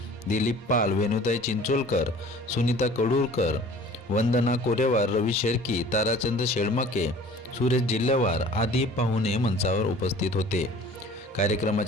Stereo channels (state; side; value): normal; both; correlation 0.47